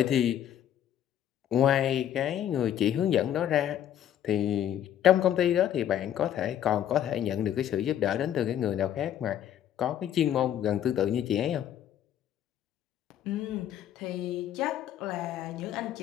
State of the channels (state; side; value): quieter; right; 10.6 dB